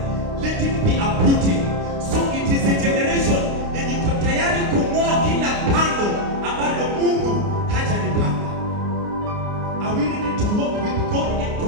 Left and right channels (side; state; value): left; late; 29 ms